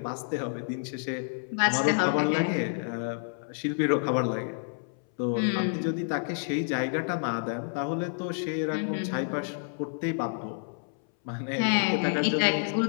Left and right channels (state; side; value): silent; right; 59 dB below the other